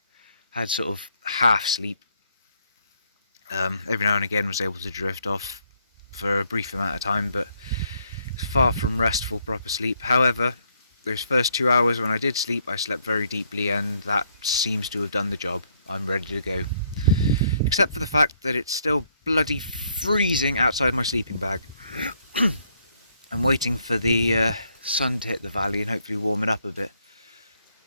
Had sort of half sleep. Every now and again was able to drift off for a brief amount of time, but far from restful proper sleep. However, those first 2 hours when I did sleep, I slept very deeply, and that seems to have done the job. I'm ready to go. Except for the fact that it's still bloody freezing outside my sleeping bag. I'm waiting for the sun to hit the valley and hopefully warm it up a bit.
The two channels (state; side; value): inverted; both; correlation -0.71